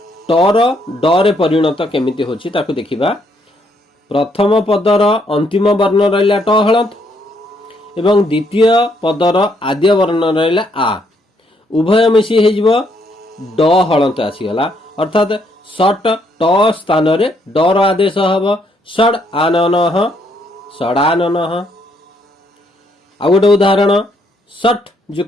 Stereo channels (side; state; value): both; normal; correlation 0.72